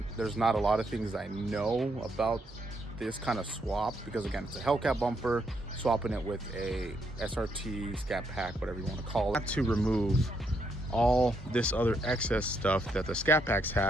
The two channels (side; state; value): both; normal; correlation 0.76